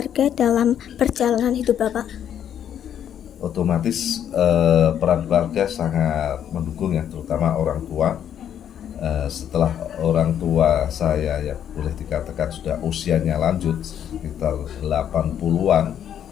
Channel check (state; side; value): quieter; right; 9.6 dB